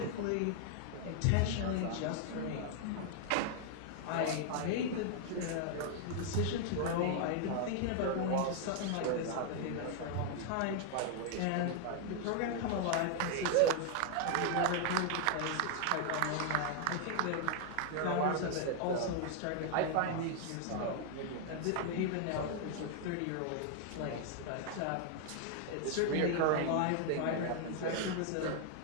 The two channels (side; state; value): both; different; correlation 0.00